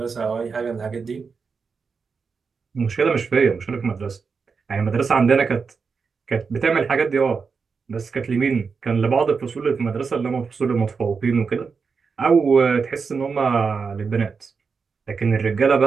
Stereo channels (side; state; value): left; quieter; 5.3 dB